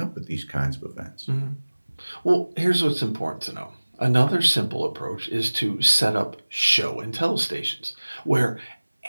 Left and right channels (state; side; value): inverted; both; correlation -1.00